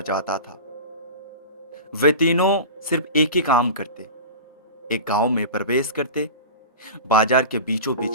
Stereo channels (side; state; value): both; inverted; correlation -0.32